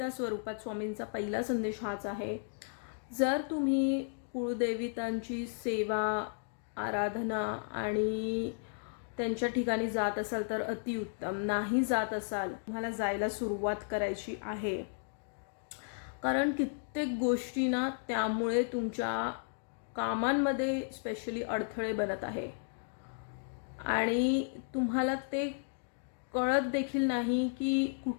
स्वरूपात स्वामींचा पहिला संदेश हाच आहे. जर तुम्ही कुळदेवितांची सेवा, आराधना आणि त्यांच्या ठिकाणी जात असाल तर अतिउत्तम. नाही जात असाल, तुम्हाला जायला सुरुवात करायची आहे. कारण कित्येक गोष्टी ना त्यामुळे तुमच्या कामांमध्ये स्पेशली अडथळे बनत आहे आणि तुम्हाला ते कळत देखील नाही की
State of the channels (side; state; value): right; silent; digital silence